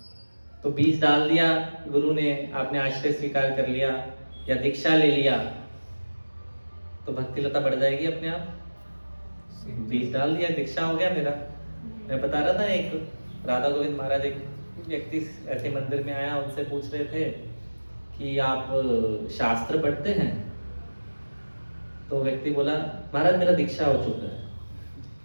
तो बीज डाल दिया गुरु ने, आपने आश्रय स्वीकार कर लिया या दीक्षा ले लिया, तो भक्ति लता बढ़ जाएगी अपने आप। बीज डाल दिया, दीक्षा हो गया मेरा। मैं बता रहा था, एक राधा गोविंद महाराज, एक व्यक्ति ऐसे मंदिर में आया, उनसे पूछ रहे थे कि आप शास्त्र पढ़ते हैं? तो व्यक्ति बोला, महाराज मेरा दीक्षा हो चुका है।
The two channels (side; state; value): both; inverted; correlation -1.00